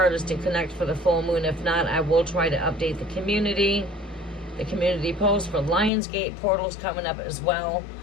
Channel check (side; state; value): right; drops out; at 5.9 s